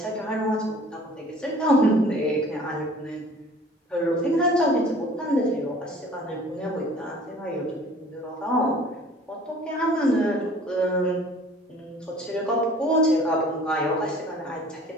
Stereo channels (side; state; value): both; normal; correlation 0.49